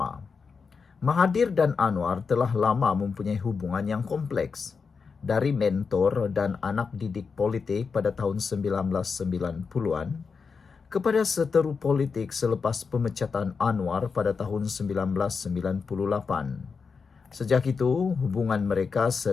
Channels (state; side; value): quieter; right; 5.3 dB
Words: Mahathir dan Anwar telah lama mempunyai hubungan yang kompleks. Dari mentor dan anak didik politik pada tahun 1990-an kepada seteru politik selepas pemecatan Anwar pada tahun 1998. Sejak itu, hubungan mereka